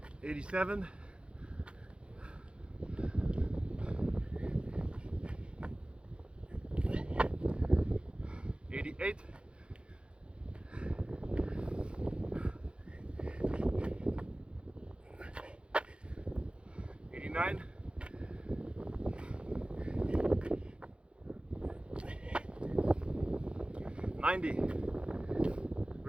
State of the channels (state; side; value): late; left; 0.057 ms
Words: 87, 88, 89, 90.